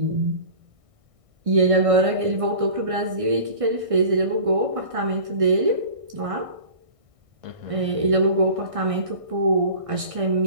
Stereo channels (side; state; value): left; late; 1.6 ms